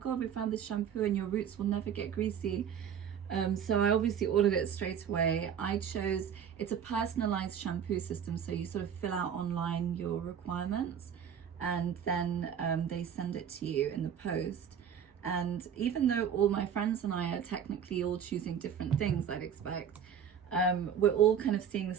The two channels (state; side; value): quieter; left; 8.1 dB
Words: we found this shampoo and your roots will never get greasy. So I obviously ordered it straight away. It's a personalized shampoo system. So you sort of fill out online your requirements and then they send it to you in the post. And even though all my friends and I are technically all choosing different things, I'd expect, we're all kind of seeing the